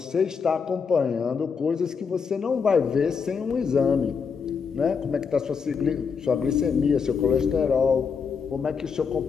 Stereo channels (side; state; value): right; quieter; 5.9 dB